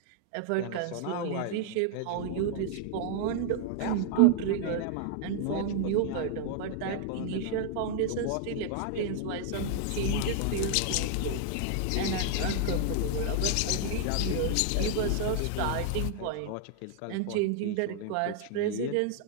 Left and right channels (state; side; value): different; both; correlation -0.01